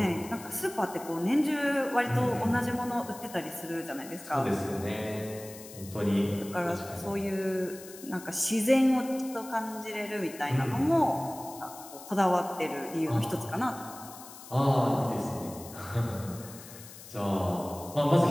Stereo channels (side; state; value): left; noise; hiss, 16 dB below the sound